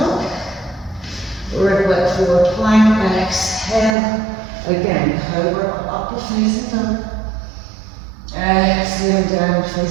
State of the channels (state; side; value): drops out; left; at 4.0 s